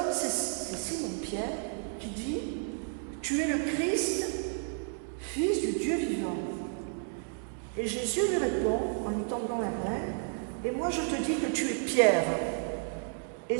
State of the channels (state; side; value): silent; left; 57 dB below the other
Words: c'est Simon-Pierre qui dit « Tu es le Christ, fils du Dieu vivant. » Et Jésus lui répond en lui tendant la main « Et moi je te dis que tu es Pierre. Et